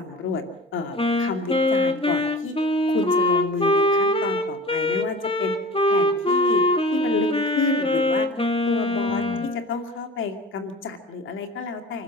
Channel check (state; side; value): normal; both; correlation 0.38